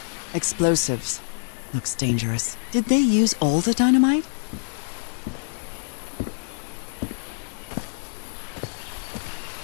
Explosives. Looks dangerous. Did they use all the dynamite?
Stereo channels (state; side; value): silent; right; 55 dB below the other